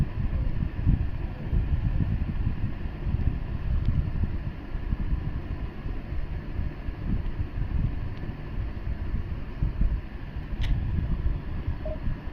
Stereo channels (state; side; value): identical; both; correlation 1.00